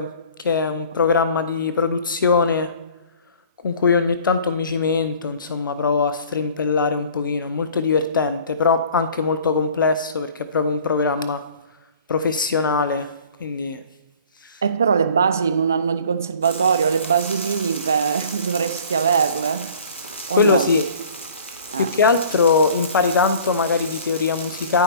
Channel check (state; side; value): inverted; both; correlation -0.49